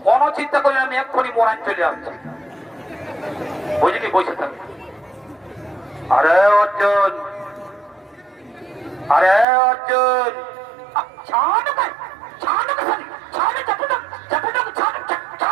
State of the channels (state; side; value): drops out; left; at 9.5 s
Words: কোনো চিন্তা করি না, আমি এক্ষুনি মোরান চলে আসছি, বুঝলি? বসে থাক। আরে অর্জুন, আরে অর্জুন, ছাড় ভাই, ছাড় ভাই, ছাড় চাপুটা চাপুটা ছাড়